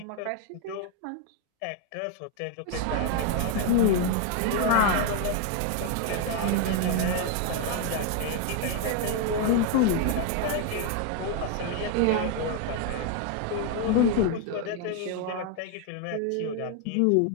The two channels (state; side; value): different; both; correlation 0.01